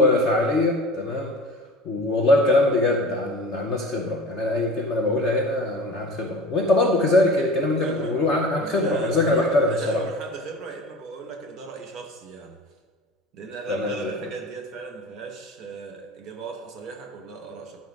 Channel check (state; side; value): normal; both; correlation 0.37